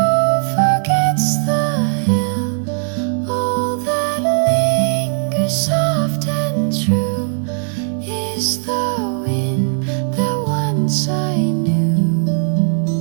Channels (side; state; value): left; silent; digital silence